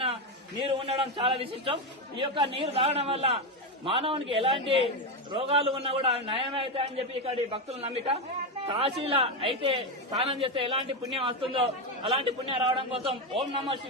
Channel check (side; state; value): both; normal; correlation 0.10